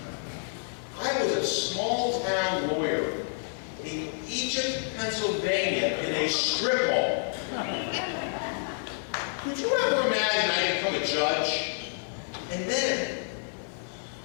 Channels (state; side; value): silent; right; digital silence